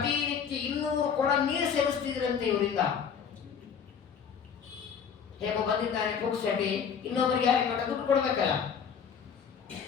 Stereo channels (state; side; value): quieter; right; 7.1 dB